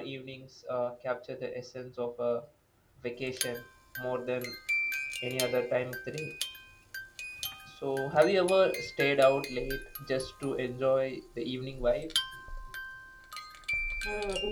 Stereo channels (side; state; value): both; identical; correlation 1.00